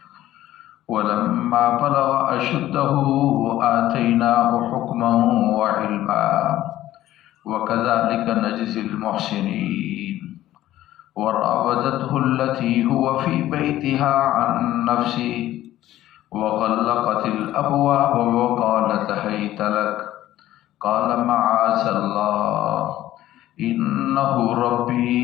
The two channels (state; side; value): quieter; right; 14.1 dB